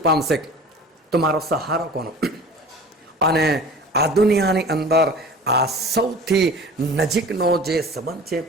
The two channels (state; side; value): normal; both; correlation 0.41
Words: પામશે, તો મારો સહારો કોનો? અને આ દુનિયાની અંદર આ સૌથી નજીકનો જે સંબંધ છે